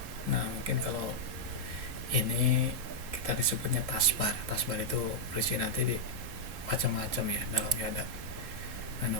Nah, mungkin kalau ini kita disebutnya taskbar. Taskbar itu berisi nanti di macam-macam ya, dalamnya ada menu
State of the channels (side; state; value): left; late; 3.7 ms